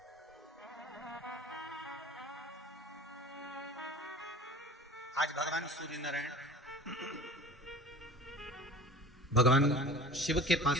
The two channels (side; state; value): both; normal; correlation 0.41